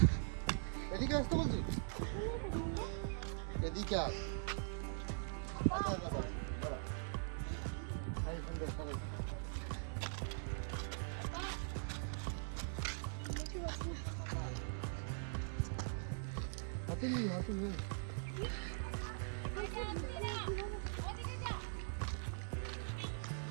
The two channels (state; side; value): silent; left; digital silence